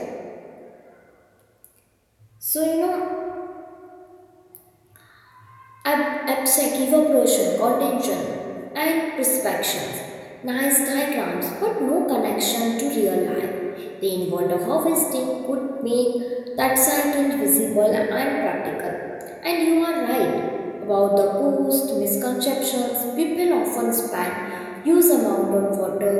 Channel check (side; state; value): both; identical; correlation 1.00